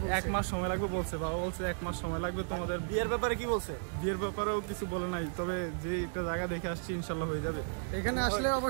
1 মাস সময় লাগবে বলছে। বাবা বলছে 1 মাস সময় লাগবে। তোমাদের বিয়ের ব্যাপারে কি বলছে? বিয়ের ব্যাপারেও কিছু বলে নাই, তবে যে একটা জায়গা দেখে আসছি ইনশাল্লাহ হয়ে যাবে। এখানে আসলে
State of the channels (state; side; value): silent; left; digital silence